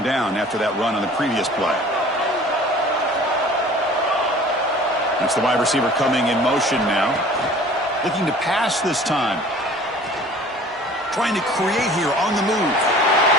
down after that run on the previous play. That's the wide receiver coming in motion now. Looking to pass this time. Trying to create here on the move.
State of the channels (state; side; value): normal; both; correlation 0.47